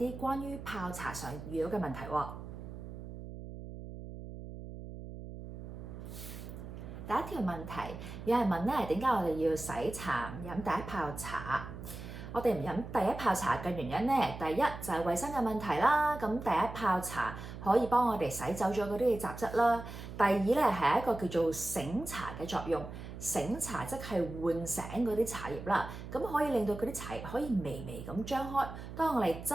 關於泡茶上遇到嘅問題喎。第一條問題，有人問咧，點解我哋要洗茶唔飲第一泡茶？我哋唔飲第一泡茶嘅原因咧，第一就係衞生嘅問題啦。咁第一泡茶可以幫我哋洗走咗嗰啲嘅雜質啦。第二咧係一個叫做醒茶嘅作用，醒茶即係喚醒嗰啲茶葉啦。咁可以令到嗰啲茶葉可以微微咁張開。當我哋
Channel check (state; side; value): noise; right; hum, 11 dB below the sound